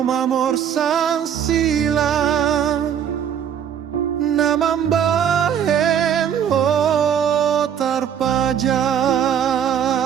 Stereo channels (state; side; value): quieter; left; 8.8 dB